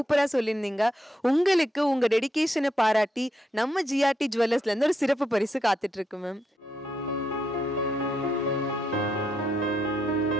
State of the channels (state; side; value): normal; both; correlation 0.80